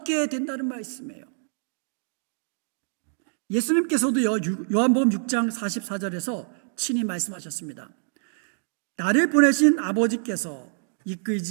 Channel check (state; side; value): silent; left; digital silence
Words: 된다는 말씀이에요. 예수님께서도요, 요한복음 6장 44절에서 친히 말씀하셨습니다. 나를 보내신 아버지께서